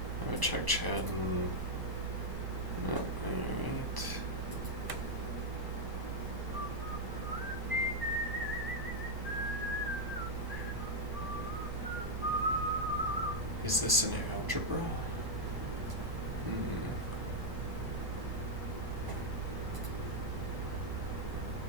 I would check chat and... No, alright. Is this an algebra?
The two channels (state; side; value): late; left; 1.0 ms